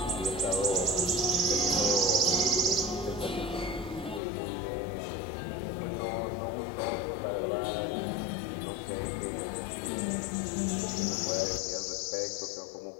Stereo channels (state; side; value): drops out; right; at 4.2 s